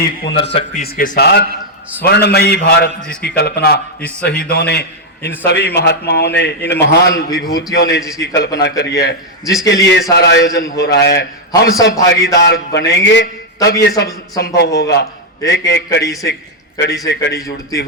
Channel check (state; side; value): normal; both; correlation 0.00